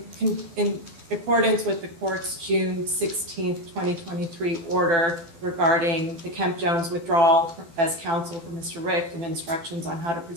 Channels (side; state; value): left; late; 12 ms